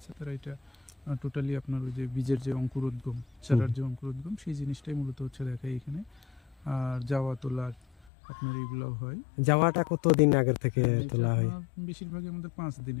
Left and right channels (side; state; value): right; drops out; at 8.1 s